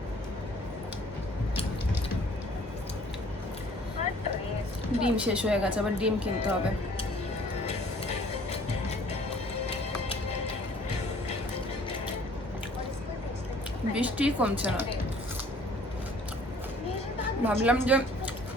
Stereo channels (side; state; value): both; normal; correlation 0.55